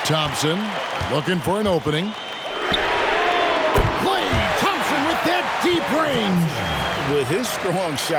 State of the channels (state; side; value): identical; both; correlation 1.00